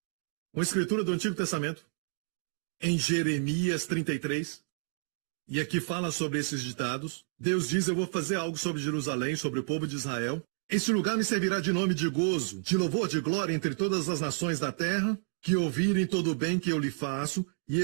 Uma escritura do Antigo Testamento, em Jeremias 33, e aqui fala sobre esses ditados. Deus diz, eu vou fazer algo sobre Jerusalém, sobre o povo de Israel. Este lugar me servirá de nome de gozo, de louvor, de glória entre todas as nações da terra, que ouvirem todo o bem que eu lhe faço, e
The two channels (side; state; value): left; silent; digital silence